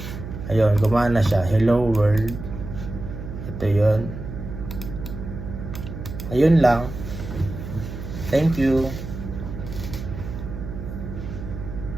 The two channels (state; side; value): noise; right; hum, 9 dB below the sound